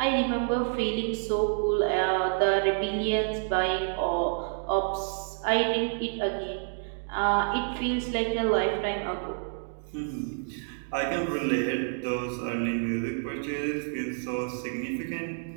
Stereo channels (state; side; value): silent; left; digital silence